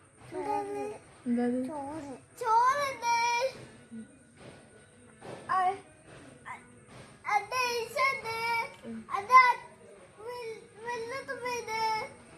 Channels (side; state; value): both; identical; correlation 1.00